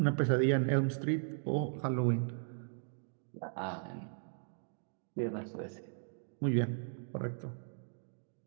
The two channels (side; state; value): left; silent; digital silence